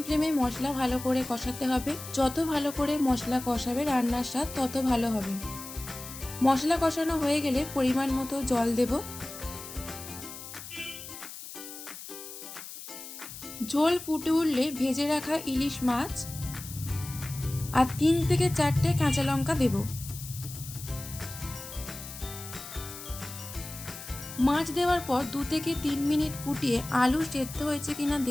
ফ্লেমে মশলা ভালো করে কষাতে হবে। যত ভালো করে মশলা কষাবে রান্নার স্বাদ তত ভালো হবে। মশলা কষানো হয়ে গেলে পরিমাণ মতো জল দেব। ঝোল ফুটে উঠলে ভেজে রাখা ইলিশ মাছ আর 3 থেকে 4টে কাঁচা লঙ্কা দেব। মাছ দেওয়ার পর 2 থেকে 3 মিনিট ফুটিয়ে আলু সেদ্ধ হয়েছে কিনা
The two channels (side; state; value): left; noise; hiss, 12 dB below the sound